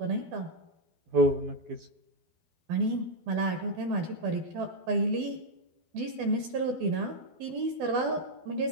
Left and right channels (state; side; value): late; left; 12 ms